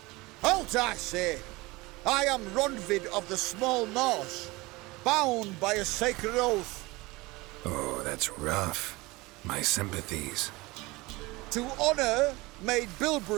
Halt, I say! I am Ronvid of the Small Marsh, bound by a sacred oath. Oh, that's rough. My sympathies. To honour Maid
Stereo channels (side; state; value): left; quieter; 22.4 dB